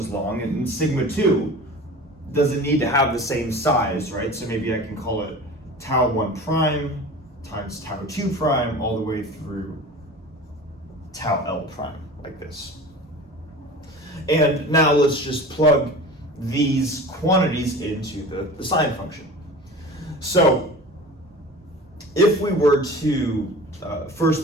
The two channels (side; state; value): both; normal; correlation 0.38